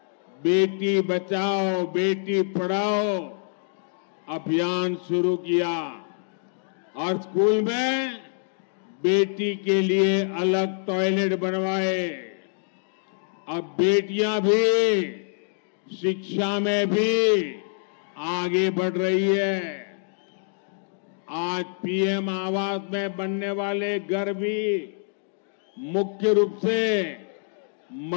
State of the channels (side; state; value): right; silent; digital silence